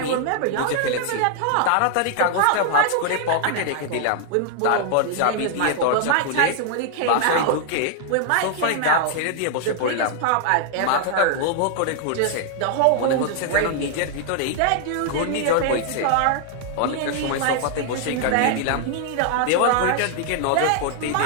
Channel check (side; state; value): both; different; correlation 0.00